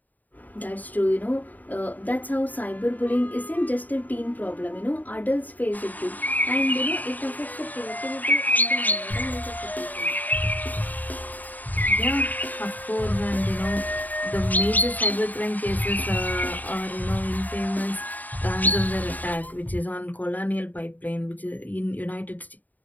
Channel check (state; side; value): late; right; 0.082 ms